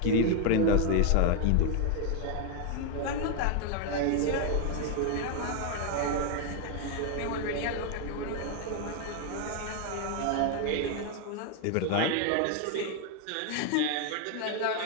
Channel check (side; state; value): both; different; correlation 0.01